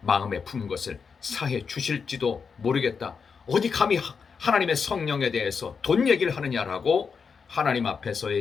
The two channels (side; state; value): right; quieter; 5.8 dB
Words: 마음에 품은 것을 사해 주실지도 모르겠다. 어디 감히 하나님의 성령에 대해서 돈 얘기를 하느냐라고 하나님